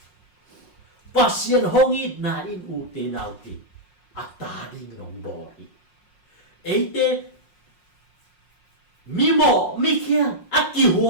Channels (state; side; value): late; right; 5.5 ms